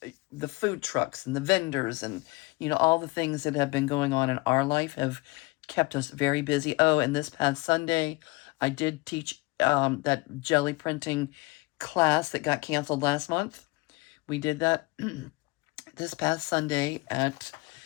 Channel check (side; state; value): right; quieter; 24.0 dB